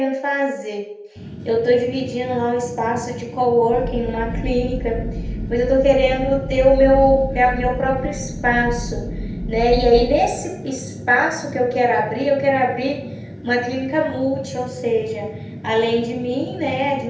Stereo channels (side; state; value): both; identical; correlation 1.00